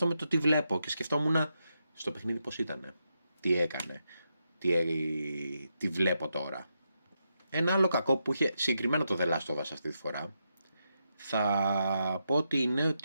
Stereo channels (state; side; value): inverted; both; correlation -0.84